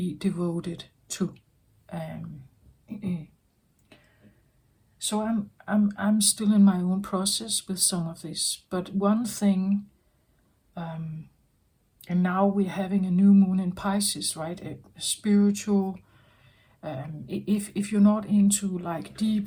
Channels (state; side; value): identical; both; correlation 1.00